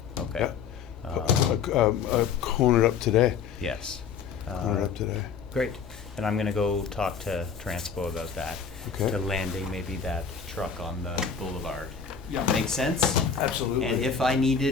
Okay. Yeah. Cone it up today. Yes. Cone it up today. Great. And I'm gonna go talk to Transpo about that. Okay. The landing maybe that truck on the boulevard. Yeah. Make sense? Absolutely. And if I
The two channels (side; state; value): right; quieter; 6.4 dB